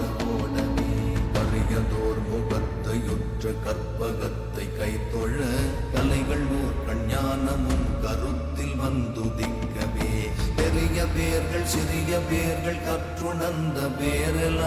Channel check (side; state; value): both; identical; correlation 1.00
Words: ஓடவே கரியதோர் முகத்தையுற்ற கற்பகத்தை கைத்தொழ கலைகள் நூற்கண் ஞானமும் கருத்தில் வந்துதிக்கவே பெரிய பேர்கள் சிறிய பேர்கள் கற்றுணர்ந்த